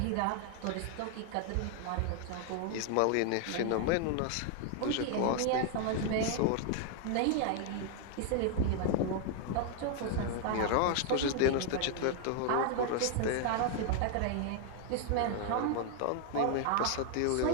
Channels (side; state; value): both; different; correlation 0.00